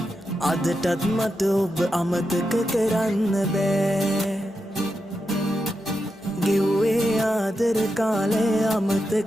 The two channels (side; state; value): both; normal; correlation 0.87